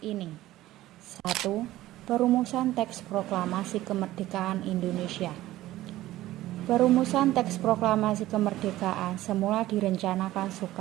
ini. 1. Perumusan teks proklamasi kemerdekaan Indonesia. Perumusan teks proklamasi kemerdekaan semula direncanakan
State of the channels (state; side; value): quieter; left; 15.6 dB